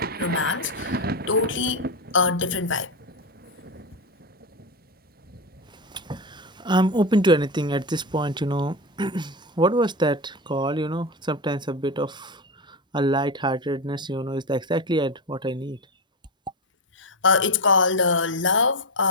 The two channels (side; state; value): both; normal; correlation 0.16